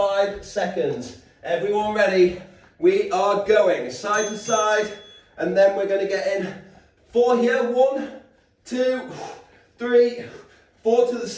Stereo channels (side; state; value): both; identical; correlation 1.00